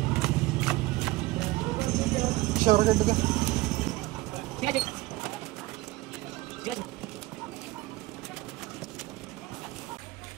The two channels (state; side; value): quieter; left; 19.1 dB